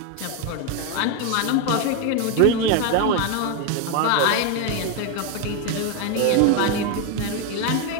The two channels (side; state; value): both; different; correlation 0.02